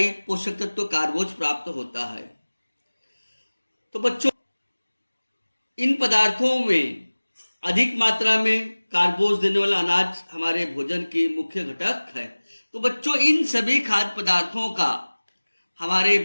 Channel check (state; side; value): inverted; both; correlation -1.00